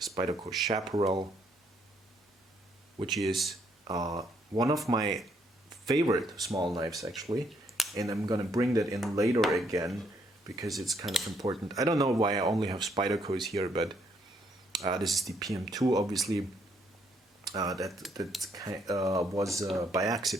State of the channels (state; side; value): normal; both; correlation 0.71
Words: Chaparral, which is one of my favorite small knives actually. And I'm gonna bring that in later again because it's kind of important. I don't know why I only have Spydercos here, but this is the PM2, obviously. That was by